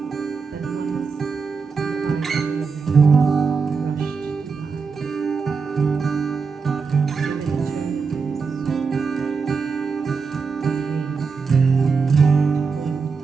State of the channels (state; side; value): quieter; left; 5.2 dB